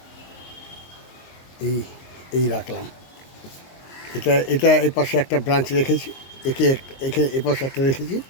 এই রাখলাম। এটা এই পাশে একটা ব্রাঞ্চ রেখেছি, একে এ পাশে একটা রেখেছি,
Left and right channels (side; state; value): right; late; 22 ms